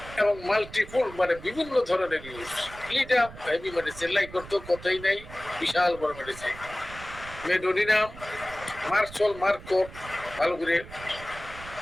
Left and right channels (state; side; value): noise; right; rumble, 16 dB below the sound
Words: এবং মাল্টিপুল মানে বিভিন্ন ধরনের use. Ledum heavy medicine, like করতে কথাই নাই, বিশাল বড় মেডিসিন। মেডোনিনাম, মার্চল, মার্কোট, ভালো করে।